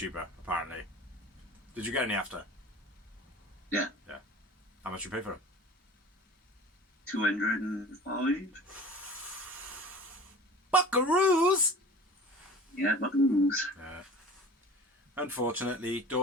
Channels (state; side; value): normal; both; correlation 0.40